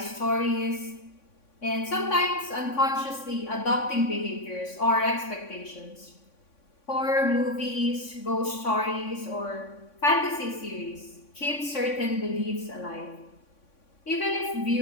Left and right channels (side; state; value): right; late; 3.6 ms